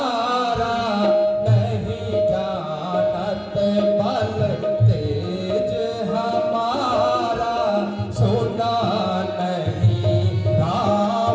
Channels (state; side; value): identical; both; correlation 1.00